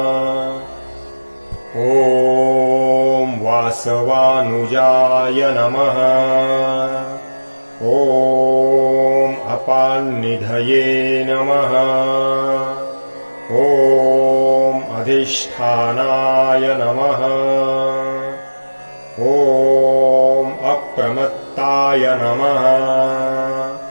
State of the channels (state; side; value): inverted; both; correlation -1.00